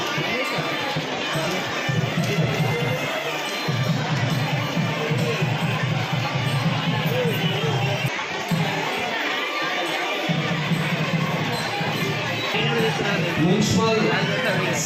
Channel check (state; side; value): identical; both; correlation 1.00